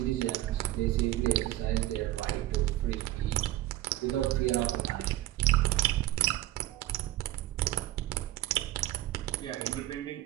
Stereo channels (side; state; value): left; quieter; 15.6 dB